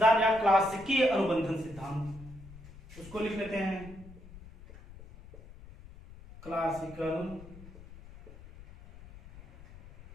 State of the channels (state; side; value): noise; left; rumble, 18 dB below the sound